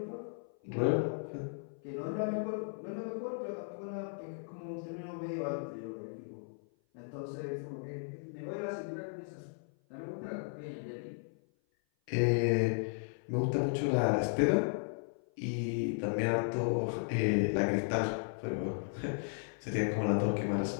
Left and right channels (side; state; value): right; silent; 54 dB below the other